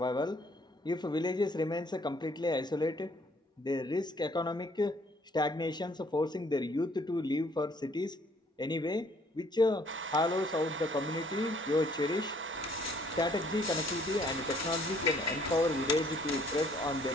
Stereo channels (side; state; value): both; normal; correlation 0.62